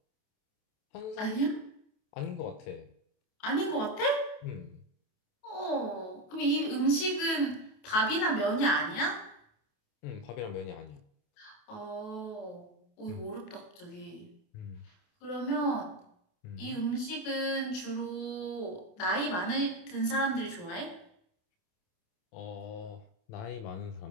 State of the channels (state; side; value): late; right; 28 ms